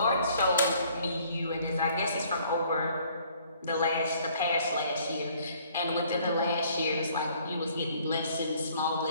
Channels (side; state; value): both; inverted; correlation -0.60